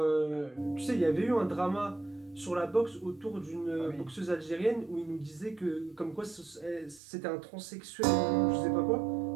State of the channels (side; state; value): left; drops out; at 7.0 s